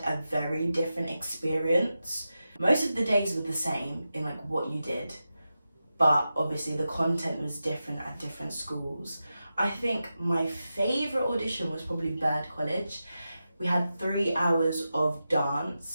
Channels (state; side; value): inverted; both; correlation -0.91